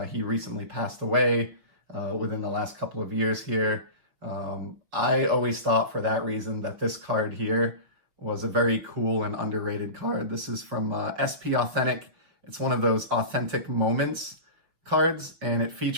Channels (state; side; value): late; left; 6.1 ms